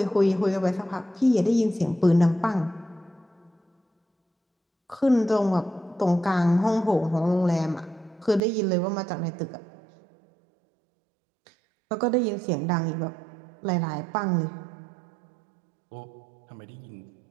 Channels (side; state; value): left; drops out; at 8.4 s